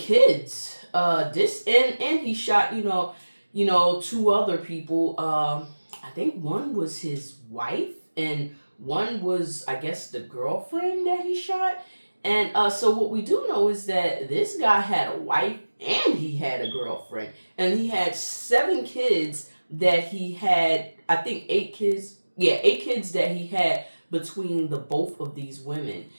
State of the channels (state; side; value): inverted; both; correlation -1.00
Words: And he shot, 2 other people. I think one was his wife, and one was, I guess, the girlfriend that he shot. And so what we do know is that this guy had a wife and he had a girlfriend. And he had 7 kids that he had, I think 8 kids. Yeah, 8 kids that he had between the both of these women.